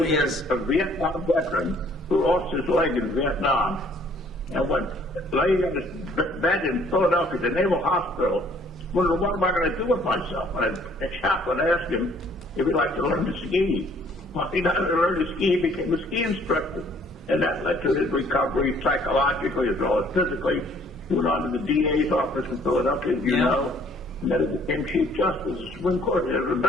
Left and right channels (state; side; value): normal; both; correlation 0.59